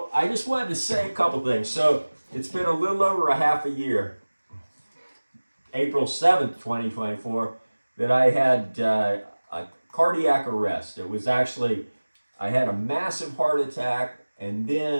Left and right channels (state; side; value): inverted; both; correlation -1.00